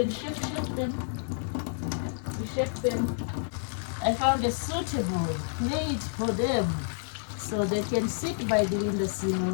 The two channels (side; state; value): right; silent; digital silence